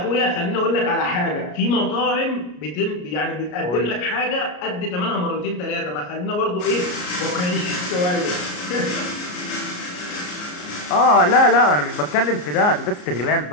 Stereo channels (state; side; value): late; right; 33 ms